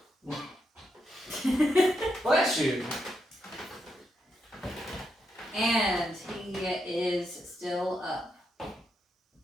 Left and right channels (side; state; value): both; normal; correlation 0.82